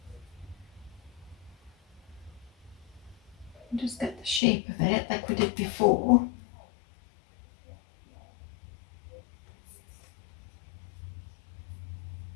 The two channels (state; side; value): drops out; right; at 4.4 s